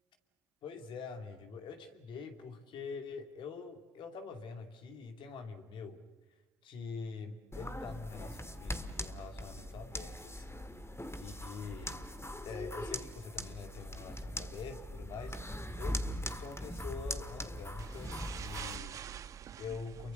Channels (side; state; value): both; normal; correlation 0.63